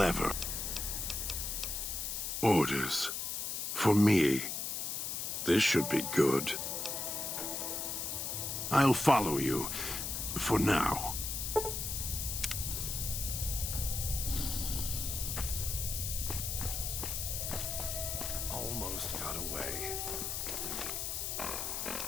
Orders. For me. This should be good. I'll follow you. For now. Almost got away.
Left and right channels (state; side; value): noise; left; hiss, 2 dB below the sound